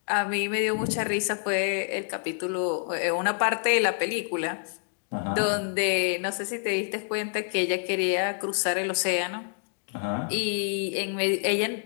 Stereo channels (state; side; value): silent; right; digital silence